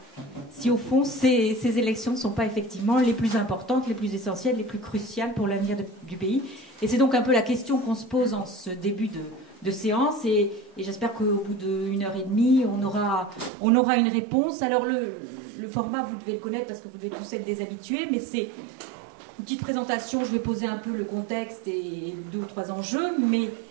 Si au fond, ces élections ne sont pas effectivement les plus importantes, les plus essentielles, les plus cruciales pour l'avenir du pays. Et c'est donc un peu la question qu'on se pose en ce début de séance. Et j'espère qu'au bout d'1h30, on aura une réponse. Alors le format, vous devez le connaître parce que vous devez tous être des habitués, mais c'est une petite présentation. Je vais poser un peu le contexte et 2 ou 3 enjeux, mais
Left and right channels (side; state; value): left; drops out; at 13.5 s